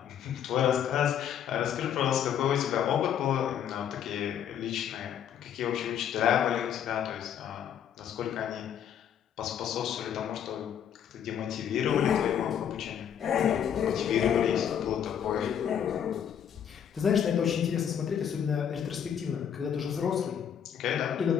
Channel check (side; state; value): right; quieter; 8.9 dB